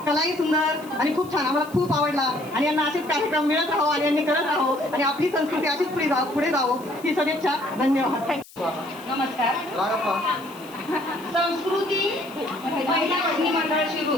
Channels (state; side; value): noise; left; hiss, 22 dB below the sound